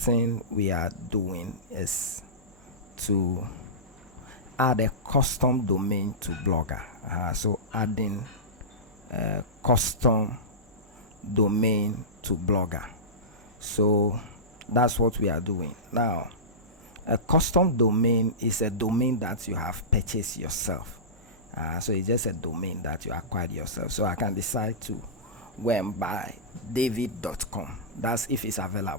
we are doing is to add a custom domain to Blogger. So adding a custom domain to Blogger. So that's what we are doing now. A custom domain is a domain that you have purchased yourself. So it's just a domain that you acquired yourself. So I can decide to go and buy david.com. That's if it's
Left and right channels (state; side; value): normal; both; correlation -0.18